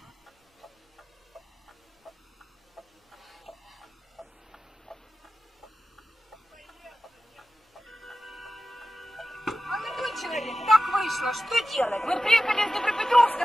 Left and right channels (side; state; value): both; normal; correlation 0.94